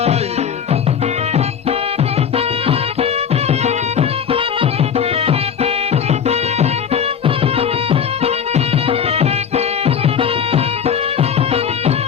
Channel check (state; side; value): quieter; right; 7.6 dB